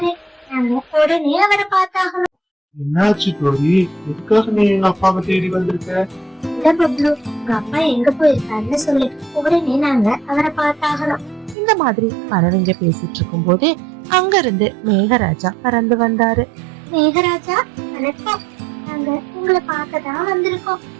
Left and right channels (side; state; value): left; drops out; at 11.6 s